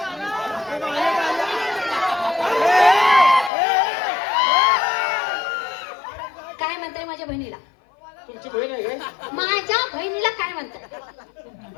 काय म्हणताय माझ्या बहिणीला? तुमची बहीण आहे काय. माझ्या बहिणीला काय म्हणताय?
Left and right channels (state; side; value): drops out; right; at 3.5 s